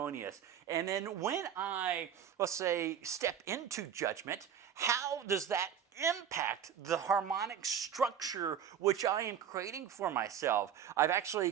And then when I, let's say, step into judgment, how does that impact the harmonic structure which I am creating for myself? I've actually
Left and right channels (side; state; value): left; quieter; 8.6 dB